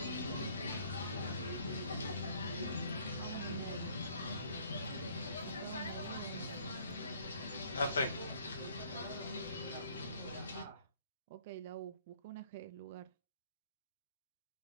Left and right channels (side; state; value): both; inverted; correlation -0.59